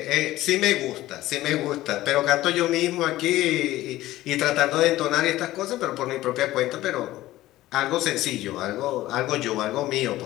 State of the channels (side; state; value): right; quieter; 16.0 dB